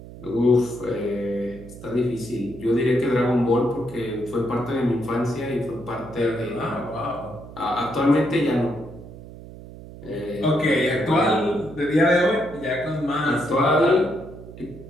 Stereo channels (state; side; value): noise; right; hum, 15 dB below the sound